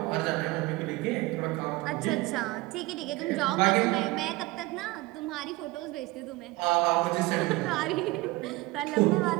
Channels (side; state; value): left; quieter; 21.0 dB